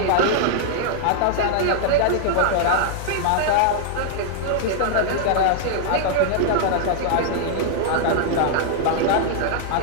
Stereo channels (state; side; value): different; both; correlation -0.01